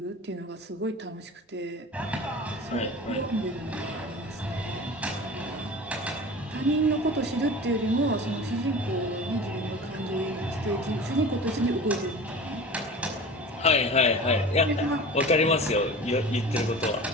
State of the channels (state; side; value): normal; both; correlation 0.36